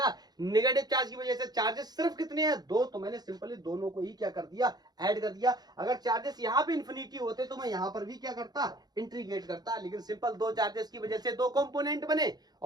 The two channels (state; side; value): late; left; 0.19 ms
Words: नेगेटिव चार्ज की वजह से। चार्जेस सिर्फ कितने हैं? 2। तो मैंने सिंपली दोनों को ही क्या कर दिया? ऐड कर दिया। अगर चार्जेस यहाँ पे इन्फिनिटी होते तो मैं यहाँ पर भी क्या करता? इंटीग्रेट करता, लेकिन सिंपल 2 चार्जेस की वजह से 2 कंपोनेंट बने,